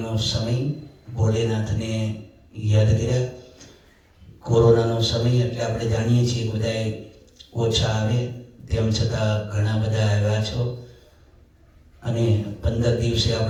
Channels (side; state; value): both; identical; correlation 1.00